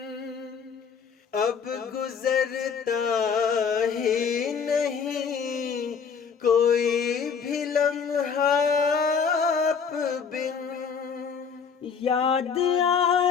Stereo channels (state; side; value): quieter; right; 6.3 dB